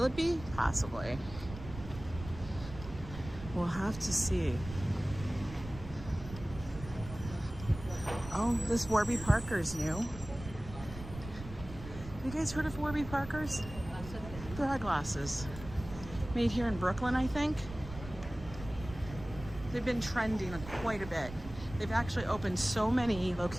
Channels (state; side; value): noise; right; rumble, 12 dB below the sound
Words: it be? Possibly. We'll have to see. Oh, this Warby Parker's new. You guys heard of Warby Parker's? They're eyeglasses. Made here in Brooklyn, I think. They've been trending quite a bit. They've actually opened so many